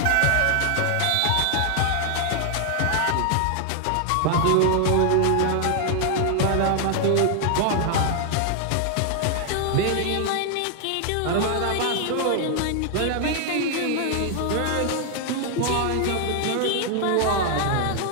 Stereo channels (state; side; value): different; both; correlation 0.00